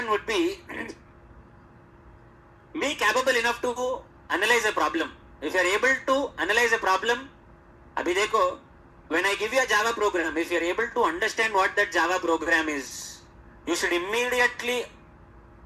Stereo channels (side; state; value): both; identical; correlation 1.00